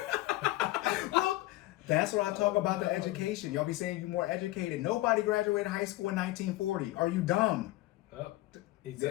Look, that's what I talk about the education. Y'all be saying you're more educated. Nobody graduated high school in 1940. Are you dumb? Oh,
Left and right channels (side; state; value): right; quieter; 17.6 dB